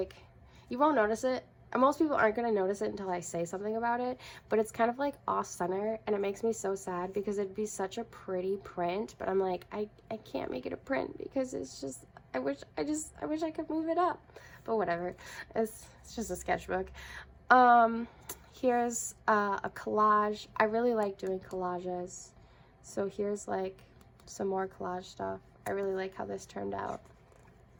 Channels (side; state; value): both; identical; correlation 1.00